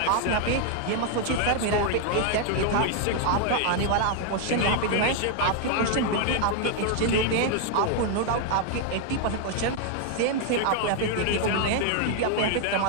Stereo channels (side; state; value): both; different; correlation 0.00